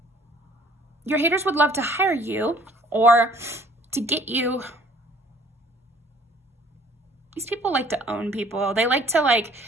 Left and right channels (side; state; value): both; normal; correlation 0.55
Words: your haters would love to hire you or to get you. These people like to own people. They like to like